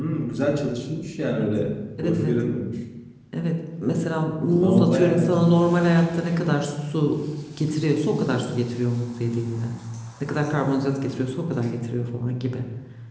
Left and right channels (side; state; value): both; identical; correlation 1.00